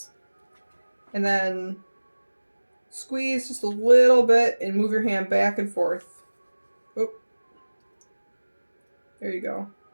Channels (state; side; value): inverted; both; correlation -1.00